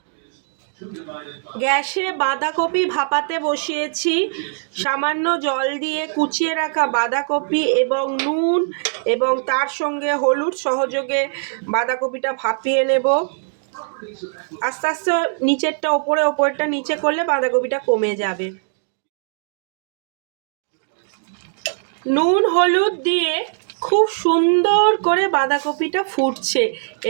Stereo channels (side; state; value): left; silent; digital silence